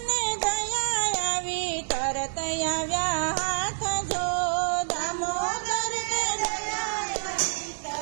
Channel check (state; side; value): silent; left; digital silence